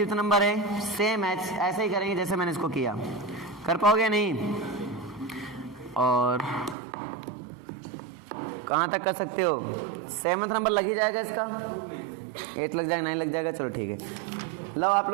नंबर है, सेम एज ऐसे ही करेंगे जैसे मैंने इसको किया, कर पाओगे नहीं। और कहाँ तक कर सकते हो, सेवंथ नंबर लग ही जाएगा इसका, 8 लग जाएगा 9 लग जाएगा, चलो ठीक है। लो आप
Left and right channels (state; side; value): drops out; left; at 6.8 s